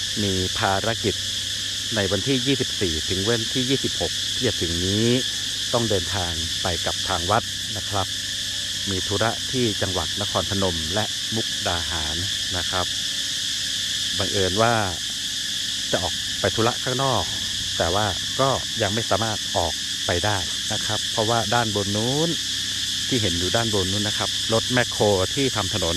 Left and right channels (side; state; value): both; identical; correlation 1.00